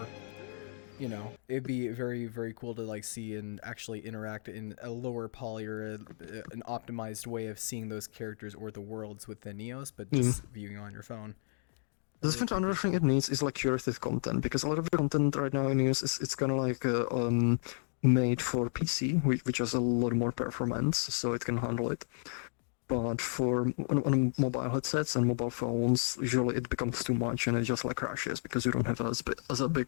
You know, it'd be very, very cool to like see and actually interact in a lower poly or an optimized way of seeing those characters or the worlds within Neos, but just viewing on your phone. The different another thing it needs is like curated content, because a lot of the content right now in Neos it's kind of like made for PC, which has a lot more performance, so it can handle it. But on mobile headsets and mobile phones, usually it becomes too much and it just like crashes because you don't have as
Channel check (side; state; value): right; silent; digital silence